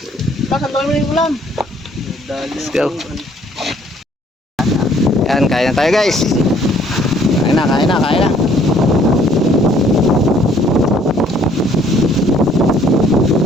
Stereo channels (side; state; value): both; normal; correlation 0.61